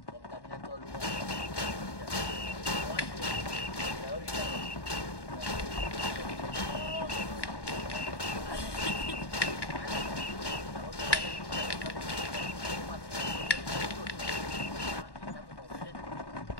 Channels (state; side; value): late; right; 1.1 ms